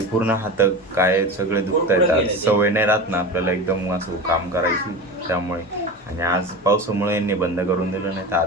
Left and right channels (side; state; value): both; normal; correlation 0.29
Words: पूर्ण हात काय सगळे दुखत आहेत. आज सवय नाही राहत ना आपल्याला एकदम असं काम करायची, त्यामुळे. आणि आज पावसामुळे यांनी बंद करून दिलं, नाही तर